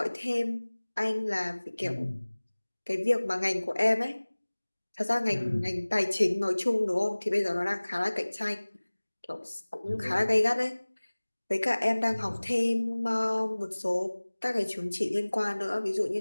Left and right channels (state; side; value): inverted; both; correlation -1.00